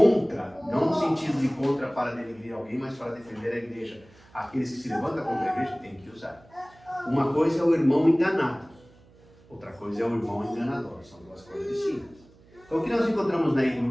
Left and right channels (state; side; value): noise; right; hum, 27 dB below the sound